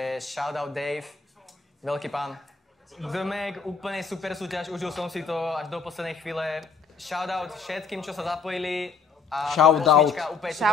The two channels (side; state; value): right; quieter; 5.0 dB